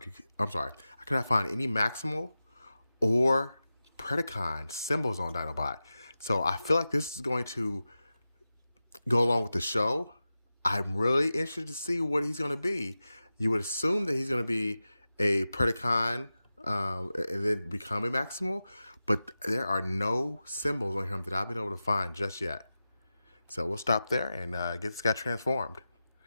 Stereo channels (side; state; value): both; inverted; correlation -0.94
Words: could not find any Maximal or Predacon symbols on Dinobot. So I feel like this is going to go along with the show. I'm really interested to see what he's going to be. You would assume that he's going to be a Predacon and then become a Maximal, but there are no symbols on him that I've been able to find just yet. So we'll stop there and get this guy transformed.